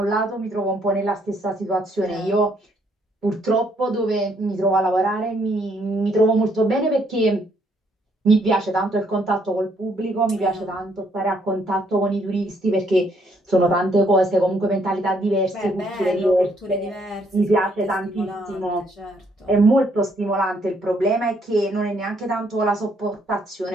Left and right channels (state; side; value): normal; both; correlation 0.69